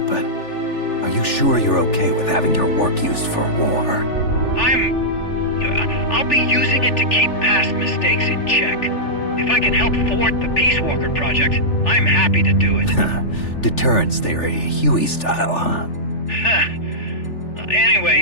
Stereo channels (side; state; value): right; late; 3.4 ms